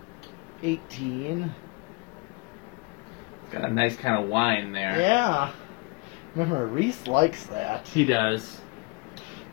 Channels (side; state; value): right; quieter; 27.6 dB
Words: $18. Got a nice kind of wine there. Yeah. Remember, Reese likes that. He does.